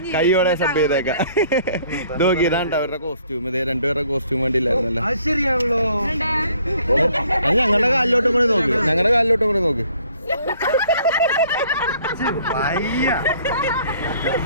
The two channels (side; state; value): both; inverted; correlation -0.61